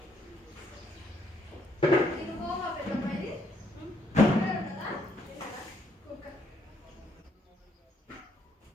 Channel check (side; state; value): both; normal; correlation 0.71